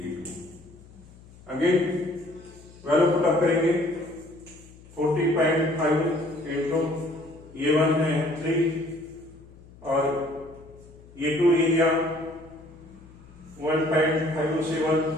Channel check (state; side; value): noise; left; hum, 22 dB below the sound